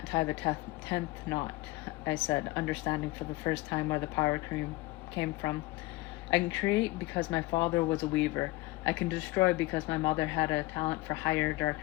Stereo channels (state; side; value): quieter; right; 20.4 dB